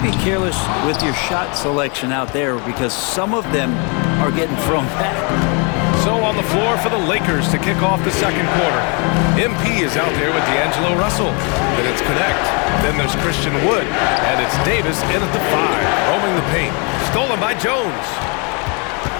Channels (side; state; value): right; quieter; 33.9 dB